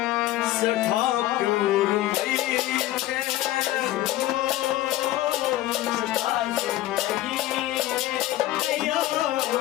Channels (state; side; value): quieter; right; 15.2 dB